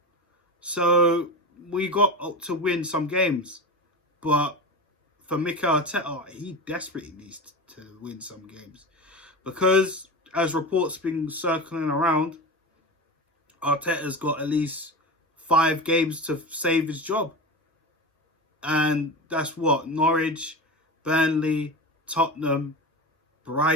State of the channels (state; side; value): normal; both; correlation 0.26